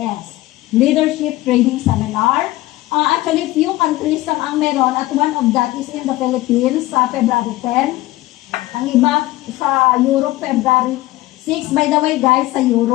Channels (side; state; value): right; quieter; 17.9 dB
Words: Leadership Training Seminar. Actually, few countries lang ang meron at one of that is in the Philippines sa February 10. Ang iba sa Europe, February 6. By the way, guys, sa